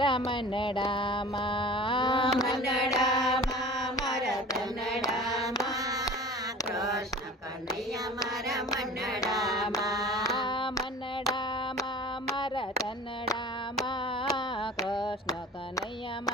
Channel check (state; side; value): normal; both; correlation 0.40